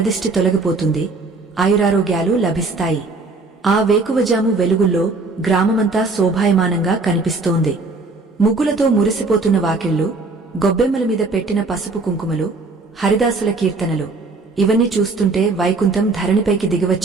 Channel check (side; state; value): left; quieter; 3.7 dB